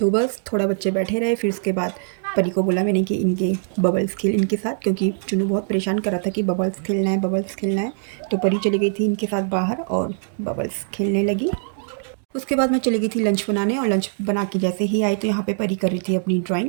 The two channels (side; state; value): left; silent; digital silence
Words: बस थोड़ा बच्चे बैठे रहे, फिर उसके बाद परी को बोला मैंने कि इनके बबल्स खेल इनके साथ, क्योंकि चुन्नू बहुत परेशान कर रहा था कि बबल्स खेलना है, बबल्स खेलना है। तो परी चली गई थी इनके साथ बाहर और बबल्स खेलने लगी। उसके बाद मैं चली गई थी लंच बनाने, और लंच बना के जैसे ही आई तो यहाँ पे परी कर रही थी अपनी